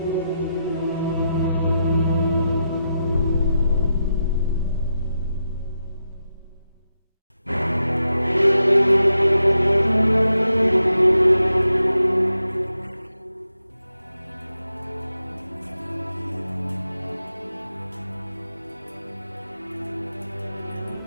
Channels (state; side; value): inverted; both; correlation -0.85